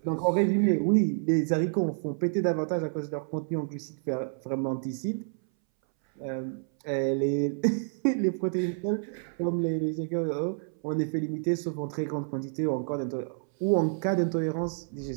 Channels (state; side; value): silent; left; 59 dB below the other